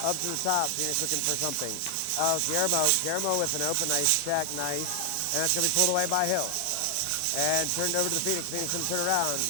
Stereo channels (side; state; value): both; different; correlation 0.00